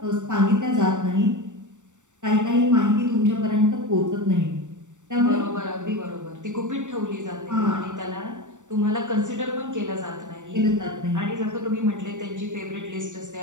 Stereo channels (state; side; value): late; left; 0.85 ms